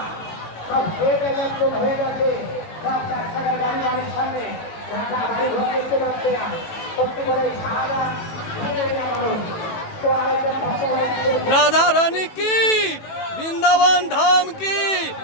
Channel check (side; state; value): right; late; 18 ms